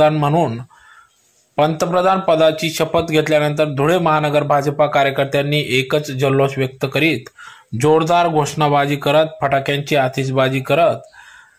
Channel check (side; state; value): both; identical; correlation 1.00